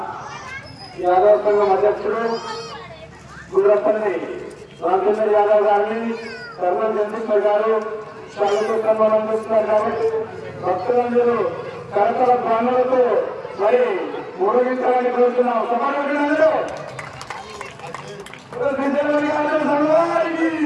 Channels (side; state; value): both; identical; correlation 1.00